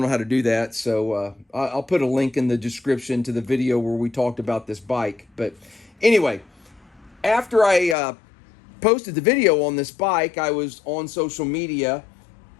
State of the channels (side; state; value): right; drops out; at 8.0 s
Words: know how to do that. So I'll put a link in the description to the video where we talked about this bike. But anyway, after I posted the video on this bike, I was on social media,